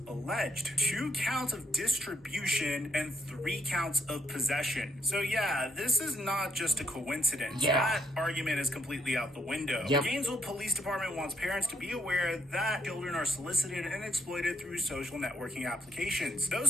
alleged. 2 counts of distribution and 3 counts of possession. So yeah, this is not just a coincidence. That argument is completely out the window. The Gainesville Police Department wants parents to be aware that children are solicited and exploited through social networking applications.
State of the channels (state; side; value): normal; both; correlation 0.72